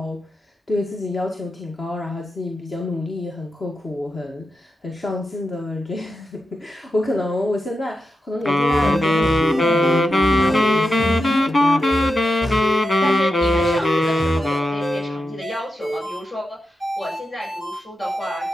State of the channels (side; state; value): both; normal; correlation 0.89